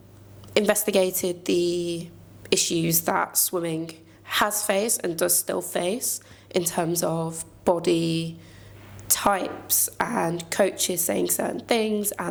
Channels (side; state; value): both; identical; correlation 1.00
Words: investigated the issues that swimming has faced and does still face in terms of body types and coaches saying certain things